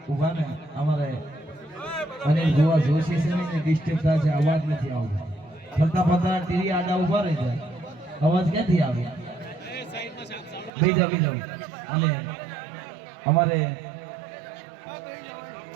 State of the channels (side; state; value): left; drops out; at 10.7 s